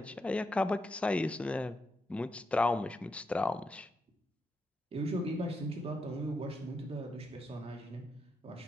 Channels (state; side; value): normal; both; correlation 0.83